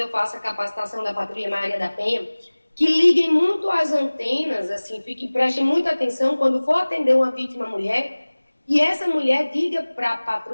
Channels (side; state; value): both; inverted; correlation -1.00